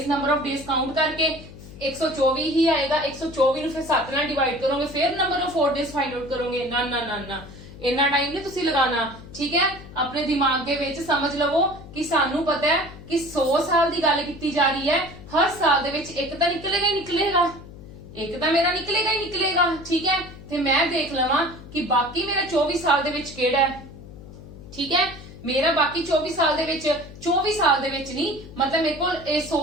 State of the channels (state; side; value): noise; left; hum, 16 dB below the sound